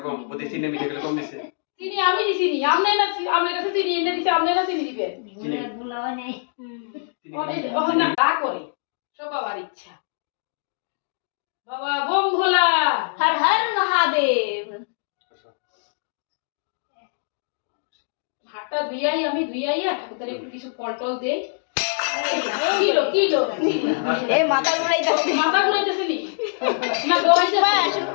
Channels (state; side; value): silent; right; digital silence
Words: কম ওতে চিনি মিঠা গুলো কম দিছে চিনি আমি দিছি নি আমনে না আমনে কাছে চিনি এনে দিছে আমনে না চিনি দিবে চিনি ভুলাও নেই ওখানে না করে সব বাবার ইচ্ছা বাবা বোম ভোলা হর হর মহাদেব হাতটা ধুইয়াই আমি ধুইয়াইয়া ঠাকুরদারে একটু কিছু ফল টল দেই কিলো কিলো এ মাথা ঘুরাইতাছে মাথা ঘুরাইতেছে নি না ঘুরাইতেছে